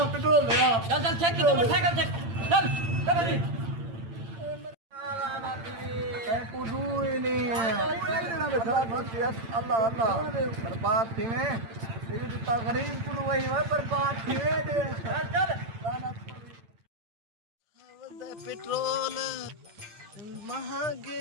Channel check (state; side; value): late; left; 8.8 ms